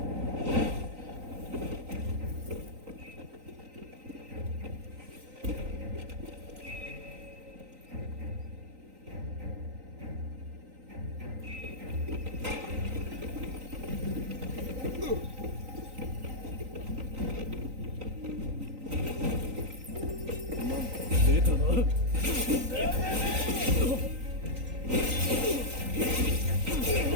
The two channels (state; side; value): late; left; 3.9 ms